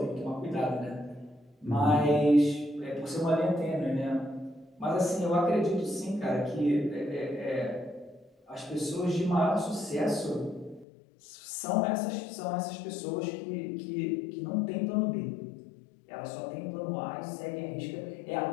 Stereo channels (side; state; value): right; drops out; at 10.9 s